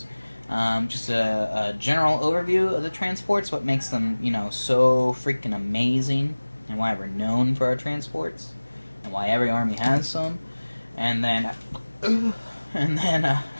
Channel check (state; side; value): inverted; both; correlation -1.00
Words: Just a general overview of the transports, what makes them, so freaking amazing, and why we're known for our transports, and why every army has some. And then